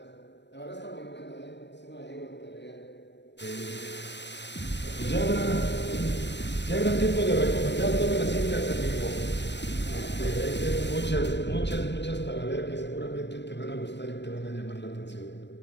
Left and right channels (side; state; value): right; late; 0.51 ms